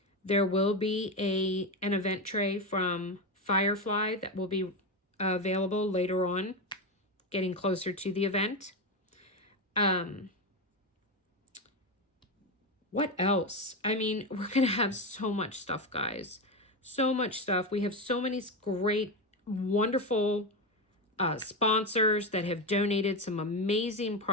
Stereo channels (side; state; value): both; normal; correlation 0.14